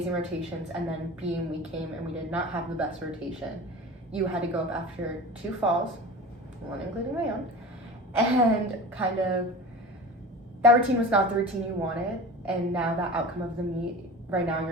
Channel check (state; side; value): normal; both; correlation 0.34